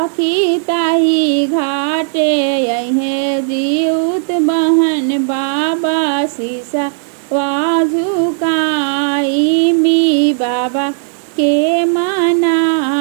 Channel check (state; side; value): silent; left; digital silence